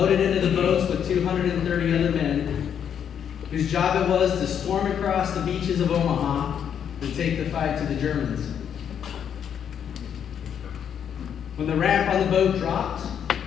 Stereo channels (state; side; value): quieter; right; 8.5 dB